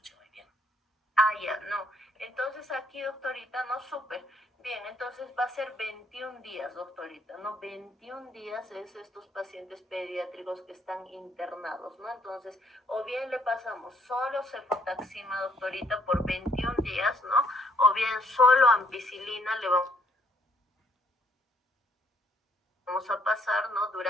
muy bien. Ah, ya, no. Entonces aquí, doctorita, no, súper. Bien, entonces va a ser 21 días, doctorita, ¿no? 21 días es estos pacientes pediátricos que están internados, ¿no? Entonces, o bien le pasamos solo cefotaxima, doctorita, por 21 días, ¿no? O bien solo ampicilina le vamos a pasar, ¿no?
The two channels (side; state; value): both; normal; correlation 0.67